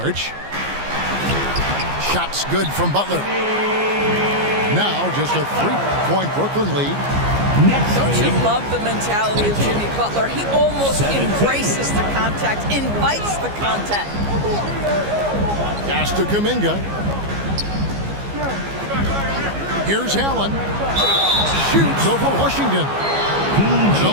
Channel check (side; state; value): left; late; 15 ms